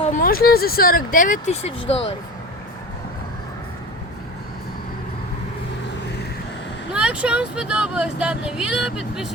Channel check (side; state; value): both; normal; correlation 0.32